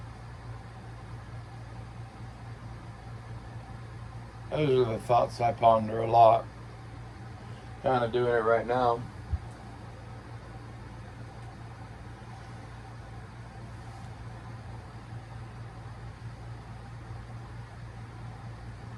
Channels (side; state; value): both; identical; correlation 1.00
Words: Those are the thoughts I ponder a lot. Kind of doing it right now.